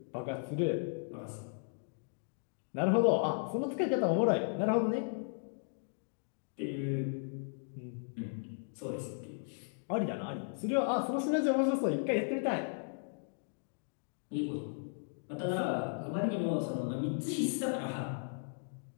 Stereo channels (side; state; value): right; silent; digital silence